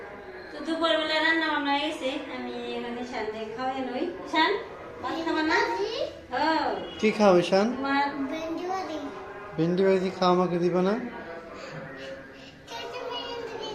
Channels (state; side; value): identical; both; correlation 1.00